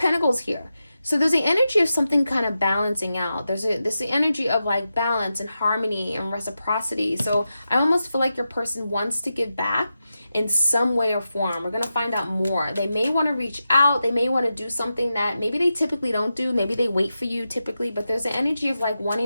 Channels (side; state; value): both; inverted; correlation -0.90